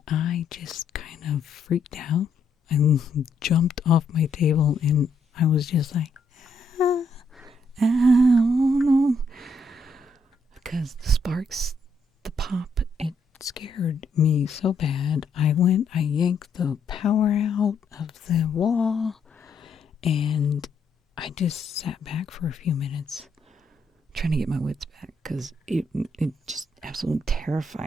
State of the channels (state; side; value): quieter; right; 3.1 dB